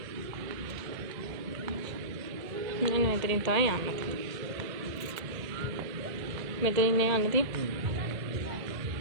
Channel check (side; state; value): left; late; 1.9 ms